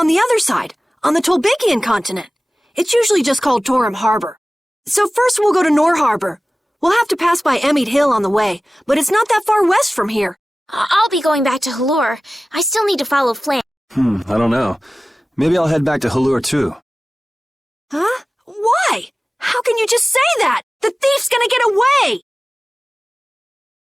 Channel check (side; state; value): both; normal; correlation 0.97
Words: the other side, on the Tolbikian continent. It's usually just called Torim Harbor. So first we'll go to Nor Harbor. We'll have to pass by Emmett Hill on the way, but it's not that far west from here. I'll be going back to Halure. I still need to follow Flynn. I don't know. Maybe I'll head back to Halure too. Huh? Why? How can you just say that? The thief's gonna get away!